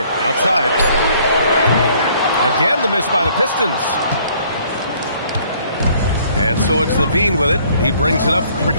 outside. Again, the miss by the Pistons. And so it's Levine with it. He brings it up for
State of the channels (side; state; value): both; inverted; correlation -0.60